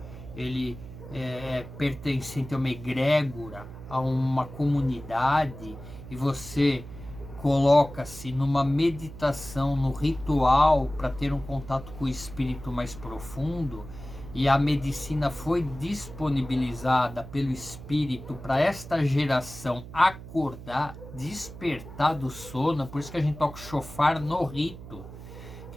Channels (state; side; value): noise; right; hum, 14 dB below the sound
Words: ele pertencente a uma egrégora, a uma comunidade, e você coloca-se numa meditação, no ritual, para ter um contato com o espírito mais profundo, e a medicina foi disponibilizada pelo Espírito para esta geração acordar, despertar do sono. Por isso que a gente toca o chofar no rito,